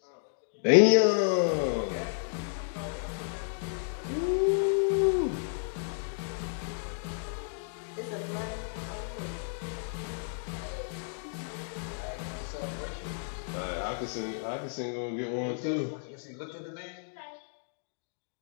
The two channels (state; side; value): silent; right; digital silence